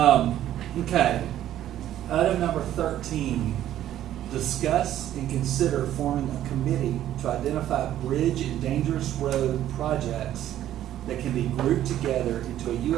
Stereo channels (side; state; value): left; quieter; 12.2 dB